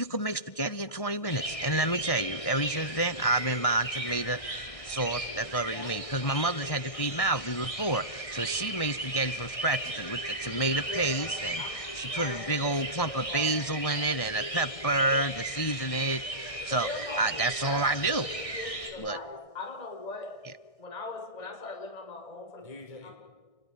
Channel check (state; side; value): late; right; 1.6 ms